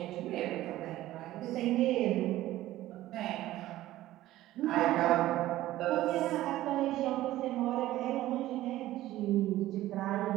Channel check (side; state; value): left; quieter; 15.2 dB